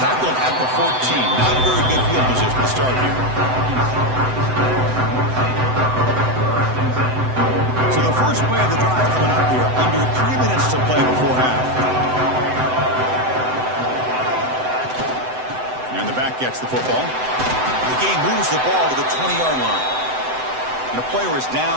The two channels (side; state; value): left; late; 7.9 ms